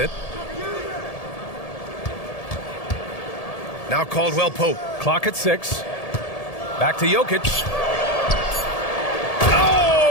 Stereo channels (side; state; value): right; late; 1.7 ms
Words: Now Caldwell Pope. Clock at 6. Back to Jokic.